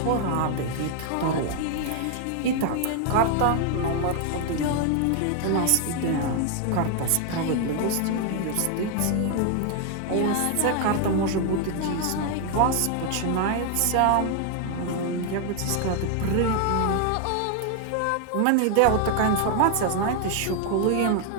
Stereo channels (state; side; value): different; both; correlation 0.00